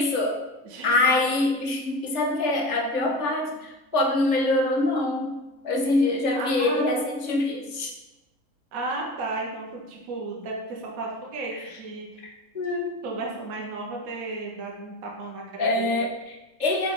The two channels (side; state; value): left; late; 3.4 ms